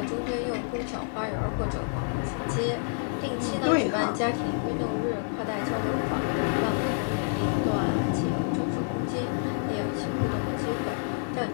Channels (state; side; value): silent; right; digital silence